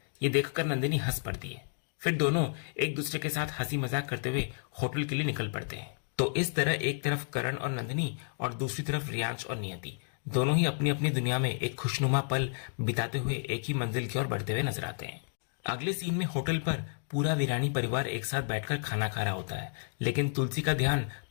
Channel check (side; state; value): right; silent; digital silence